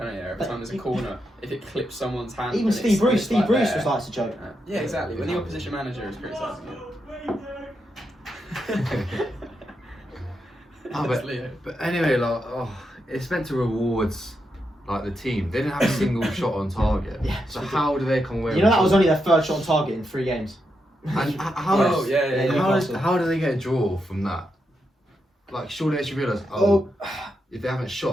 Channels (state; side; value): normal; both; correlation 0.84